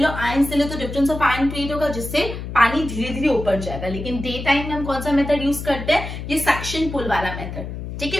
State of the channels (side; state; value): left; noise; hum, 8 dB below the sound